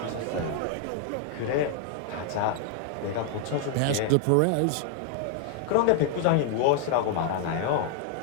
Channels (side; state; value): both; different; correlation 0.00